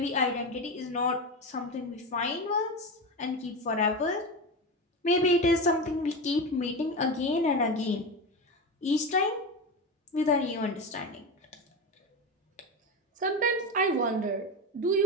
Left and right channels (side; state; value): both; normal; correlation 0.20